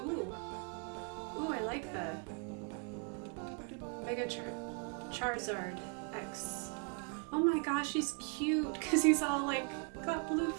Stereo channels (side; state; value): left; quieter; 36.5 dB